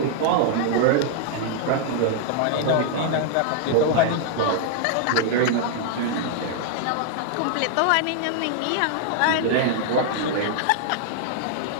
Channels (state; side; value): different; both; correlation 0.00